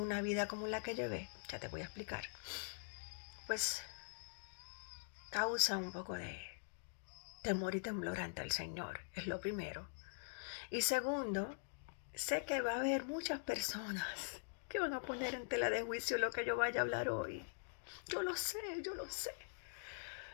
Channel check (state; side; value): silent; right; digital silence